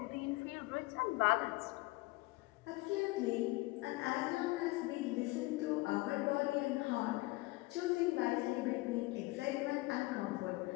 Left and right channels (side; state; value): right; quieter; 21.9 dB